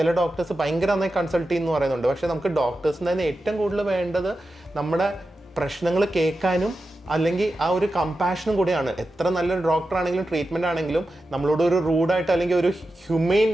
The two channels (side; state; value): both; normal; correlation 0.91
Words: ഡോക്ടേഴ്സ് ഭയങ്കര നന്നായി കൺസൾട്ട് ചെയ്യുന്നു പറയുന്നുണ്ട്. പക്ഷെ നമുക്ക് ഡോക്ടേഴ്സിന് തന്നെ ഏറ്റവും കൂടുതൽ വേണ്ടത് നമ്മുടെ പ്രശ്നങ്ങൾ കേൾക്കാനും അല്ലെങ്കിൽ ആ ഒരു കമ്പാഷനും കൂടിയാണ്. എത്ര നല്ലൊരു ഡോക്ടർ ആണെങ്കിലും ട്രീറ്റ്മെന്റ് ആണെങ്കിലും നമ്മളോട് ഒരു റൂഡായിട്ട് അല്ലെങ്കിൽ ഒരു ഹ്യൂമെയിൻ